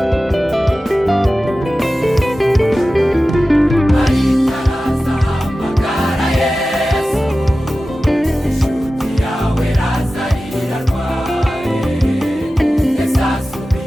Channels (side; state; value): both; normal; correlation 0.95